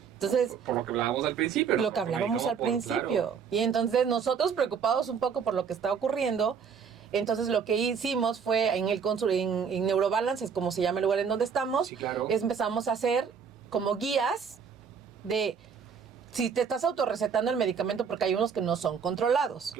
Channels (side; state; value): left; quieter; 6.6 dB